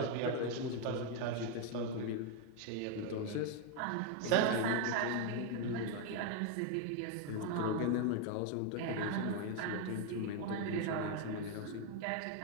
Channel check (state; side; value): different; both; correlation 0.01